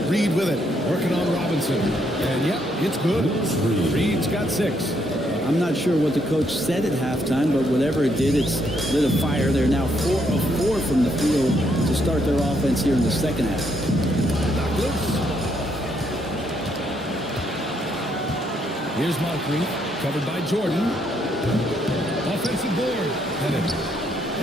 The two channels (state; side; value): normal; both; correlation 0.74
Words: Reed with it, working on Robinson. And yep, it's good. Reed's got 6. I'm not sure what the coach said at halftime, but whatever it did, it's lit a fire. They're now 4 of 4 from the field to start their offense here in the second half. Knocked loose. Here's Moncrief, covered by Jordan. Offensive board. Pettit.